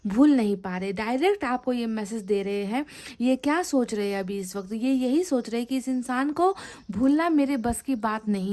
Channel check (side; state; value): both; identical; correlation 1.00